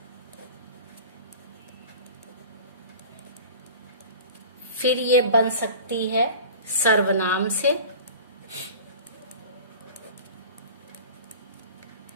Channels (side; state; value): both; inverted; correlation -0.39